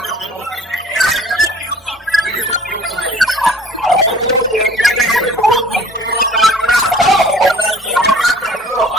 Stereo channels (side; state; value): both; normal; correlation 0.51